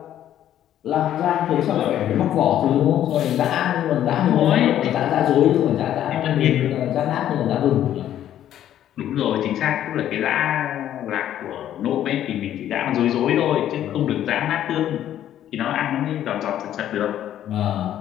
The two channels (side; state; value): right; quieter; 11.4 dB